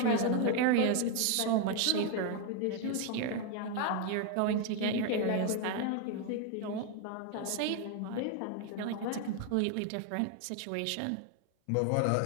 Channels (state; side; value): different; both; correlation 0.01